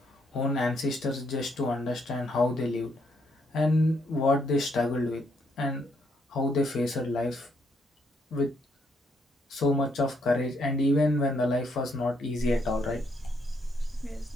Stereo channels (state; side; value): normal; both; correlation 0.73